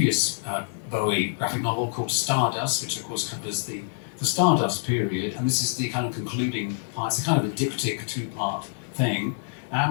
Bowie graphic novel called Stardust, which of course covers the Stardust period, and this is the kind of concluding part. It's a kind of a diptych two-part thing. And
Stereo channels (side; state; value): right; silent; digital silence